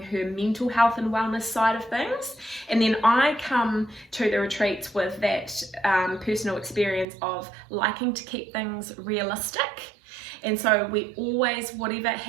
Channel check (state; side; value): drops out; left; at 7.1 s